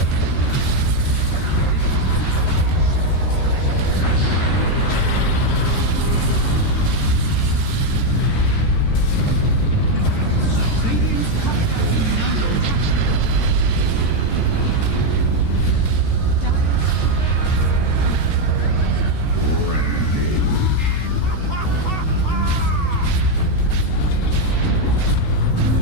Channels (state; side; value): late; right; 13 ms